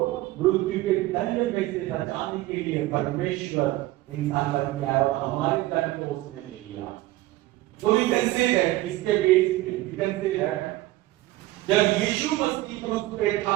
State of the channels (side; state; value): left; quieter; 17.6 dB